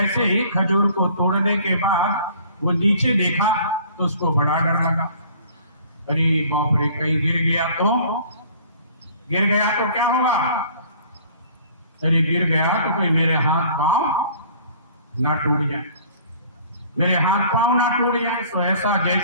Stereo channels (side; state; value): both; inverted; correlation -0.52